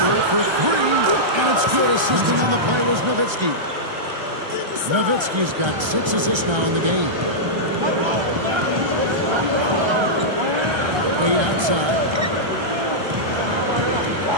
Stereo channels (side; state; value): left; late; 1.3 ms